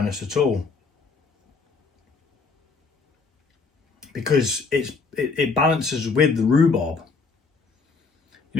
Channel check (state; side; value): quieter; right; 4.5 dB